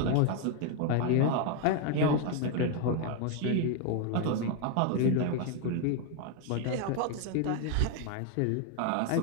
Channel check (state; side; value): different; both; correlation 0.01